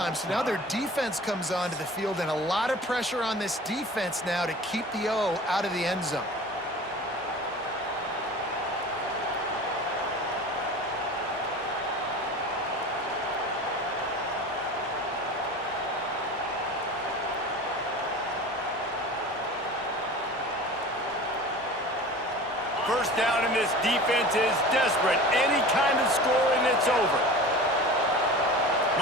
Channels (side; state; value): both; normal; correlation 0.37